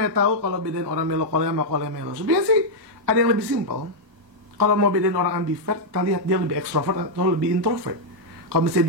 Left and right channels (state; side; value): late; left; 1.1 ms